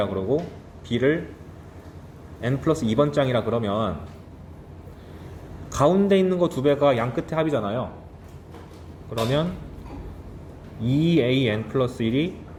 그러고, b를 n 플러스 2번째 항이라 그러면 가운데 있는 거 2배가 양끝의 합이잖아요. 그러면 2an 플러스 1이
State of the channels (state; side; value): identical; both; correlation 1.00